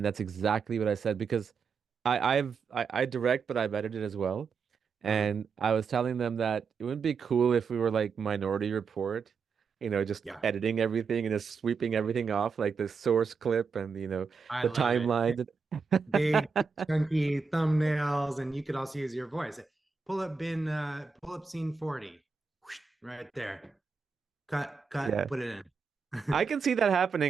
exactly what I said because I direct, but I've edited as well, Mhm. and I was telling them that it would be cool if we were like Minority Report, just Yeah, editing everything and just sweeping everything off, like the source clip and I the love it. timeline. Big chunky thumbnails, and you could also use your voice. Pull up scene 40. Whoosh, right there. Cut, Yeah, put it I in. can see that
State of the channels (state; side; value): quieter; left; 5.3 dB